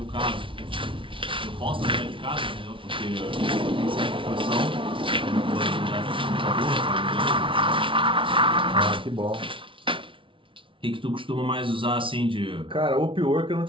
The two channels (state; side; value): late; left; 0.25 ms